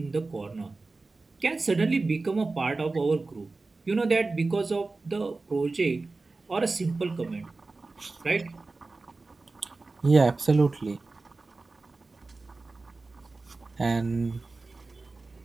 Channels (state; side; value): quieter; left; 3.6 dB